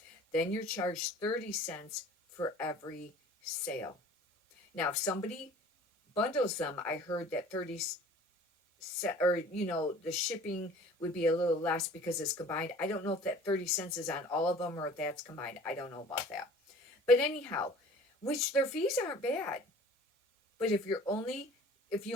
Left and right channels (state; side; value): normal; both; correlation 0.47